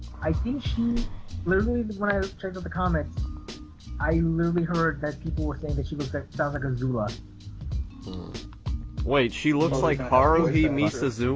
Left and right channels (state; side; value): identical; both; correlation 1.00